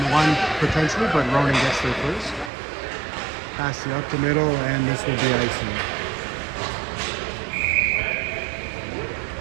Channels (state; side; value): drops out; left; at 2.5 s